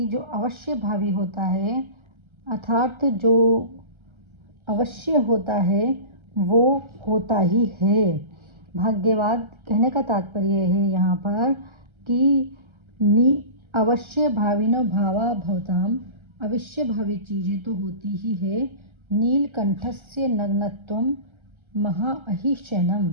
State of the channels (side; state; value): left; late; 1.3 ms